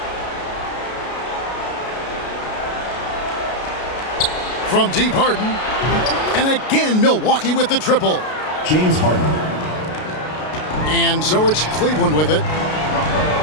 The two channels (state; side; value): late; right; 33 ms